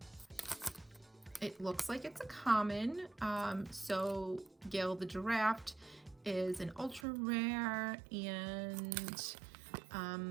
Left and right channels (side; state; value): left; drops out; at 7.1 s